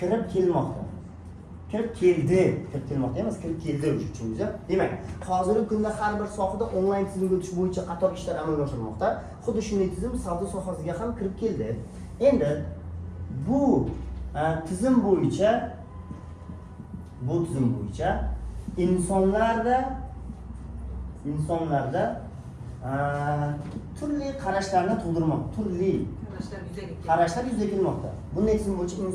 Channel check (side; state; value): both; identical; correlation 1.00